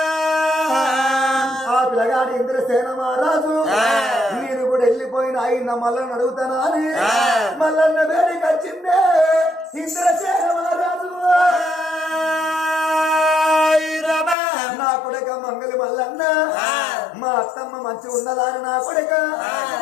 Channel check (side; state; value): right; drops out; at 14.4 s